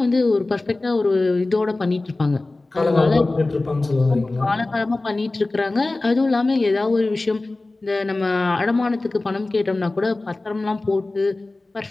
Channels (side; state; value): right; quieter; 3.1 dB